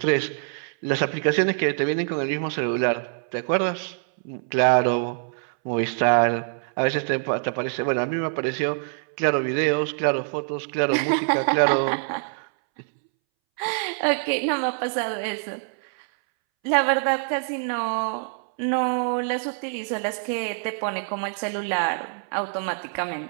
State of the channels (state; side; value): silent; left; 62 dB below the other